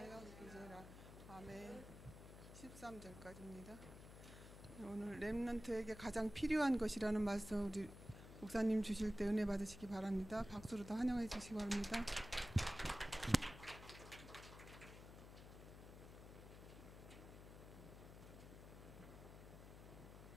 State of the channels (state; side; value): noise; left; hum, 14 dB below the sound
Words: 기지라. 아멘. 13절까지입니다. 오늘 렘넌트에게 가장 필요한 것이라는 말씀 우리 목사님 주실 때 은혜 받으시기 바랍니다. 박수로 더 환영해 주시기 바랍니다.